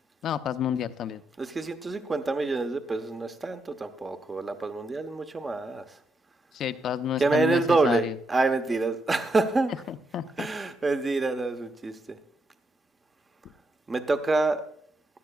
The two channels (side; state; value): both; normal; correlation 0.80